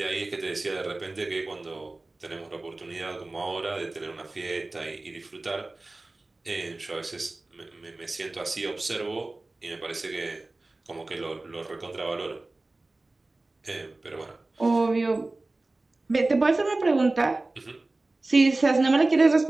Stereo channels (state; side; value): quieter; left; 3.0 dB